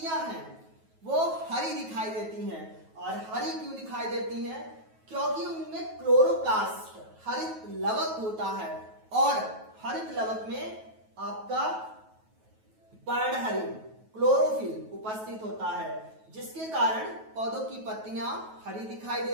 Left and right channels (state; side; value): late; left; 9.3 ms